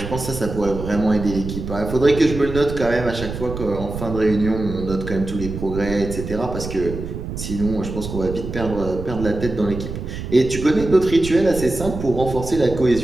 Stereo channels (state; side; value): noise; right; rumble, 7 dB below the sound